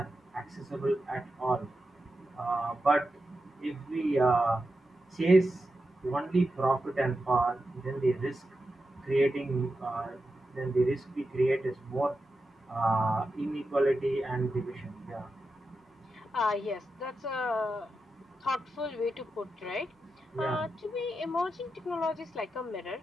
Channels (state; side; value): normal; both; correlation 0.89